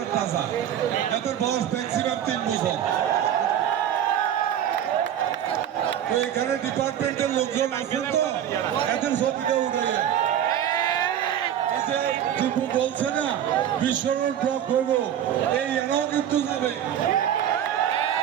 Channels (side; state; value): left; quieter; 10.2 dB